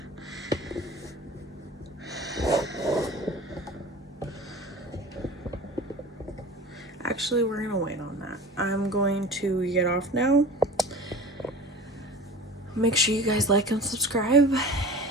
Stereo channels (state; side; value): normal; both; correlation 0.38